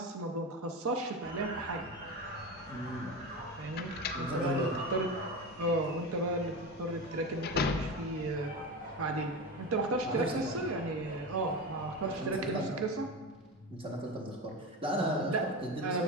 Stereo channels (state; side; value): normal; both; correlation 0.23